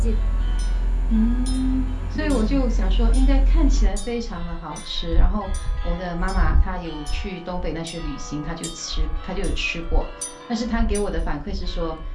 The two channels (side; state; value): both; identical; correlation 1.00